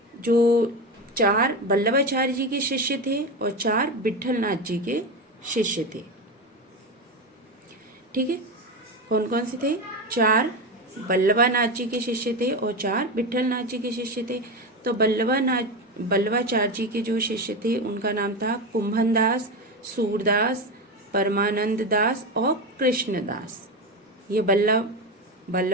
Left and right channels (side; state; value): both; normal; correlation 0.18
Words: जो 4 वल्लभाचार्य जी के शिष्य थे और 4 विट्ठलनाथ जी के शिष्य थे। ठीक है, कौन कौन से थे, 4 वल्लभानाथ जी के शिष्य थे और 4 विट्ठलनाथ जी के शिष्य थे। तो वल्लभाचार्य जी के जो शिष्य थे उनका नाम था कुंभनदास, सूरदास, परमानंद दास और कृष्णदास। ये